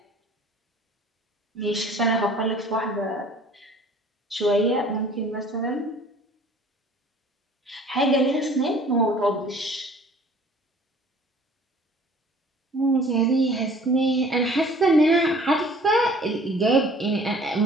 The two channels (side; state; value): both; normal; correlation 0.51